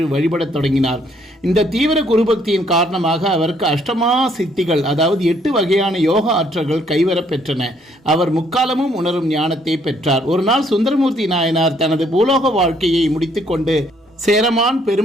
வழிபடத் தொடங்கினார். இந்த தீவிர குருபக்தியின் காரணமாக அவருக்கு அஷ்டமா சித்திகள், அதாவது 8 வகையான யோக ஆற்றல்கள் கைவரப் பெற்றன. அவர் முக்காலமும் உணரும் ஞானத்தை பெற்றார். ஒரு நாள் சுந்தரமூர்த்தி நாயனார் தனது பூலோக வாழ்க்கையை முடித்துக்கொண்டு சேரமான்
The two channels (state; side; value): normal; both; correlation 0.67